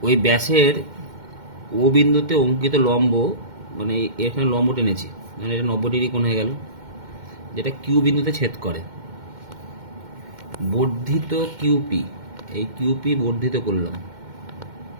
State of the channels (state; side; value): late; left; 2.1 ms